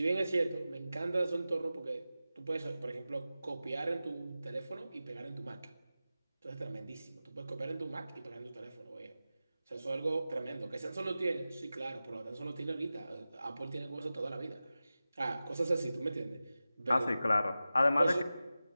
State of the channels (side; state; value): both; inverted; correlation -0.95